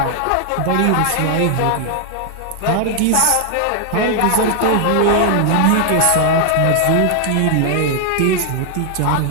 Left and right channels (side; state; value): both; different; correlation 0.00